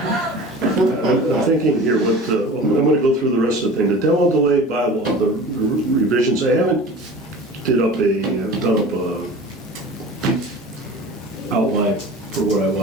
I'm thinking here, I'm going to go through the rest of the thing. The demo delay bylaw, the revisions, I haven't done up a outline for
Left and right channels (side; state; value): both; normal; correlation 0.38